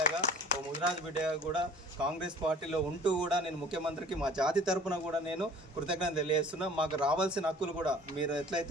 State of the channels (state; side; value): normal; both; correlation 0.49